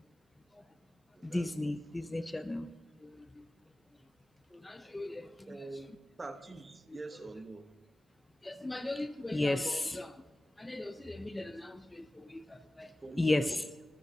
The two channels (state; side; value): normal; both; correlation 0.97